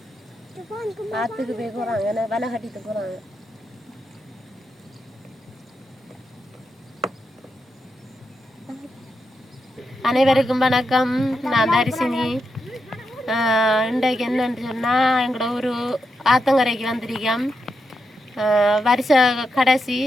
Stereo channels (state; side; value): normal; both; correlation 0.85